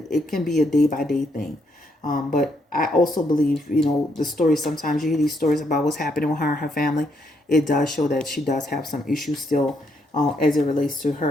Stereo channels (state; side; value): normal; both; correlation 0.75